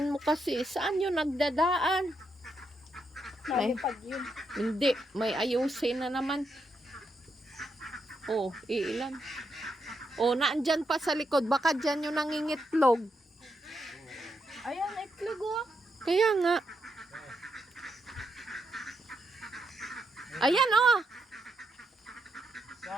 mo kasi. Saan yun nagdadaan? Nalipad yun. Hindi. May ayusin na naman. Oh, ilan? Oh, naandyan pa sa likod. Baka dyan yung nangingitlog. Ayan, itlog oh. Kaya nga. Ayan oh.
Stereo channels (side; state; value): both; normal; correlation 0.81